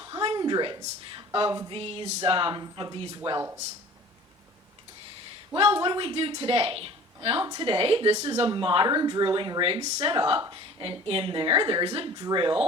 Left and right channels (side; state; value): both; normal; correlation 0.45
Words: of these wells. Well, what do we do today? Well, today, this is a modern drilling rig set up, and in there's a